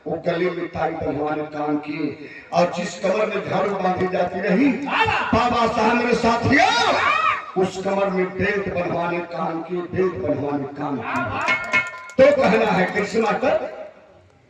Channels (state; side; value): identical; both; correlation 1.00